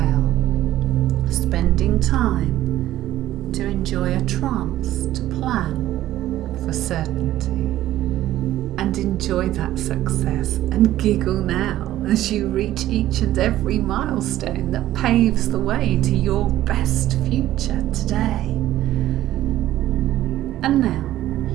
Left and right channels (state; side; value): quieter; left; 13.9 dB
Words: spending time to enjoy a trance, to plan for certainty, and enjoy that success and giggle now as you reach each and every milestone that paves the way to your best future today. And now,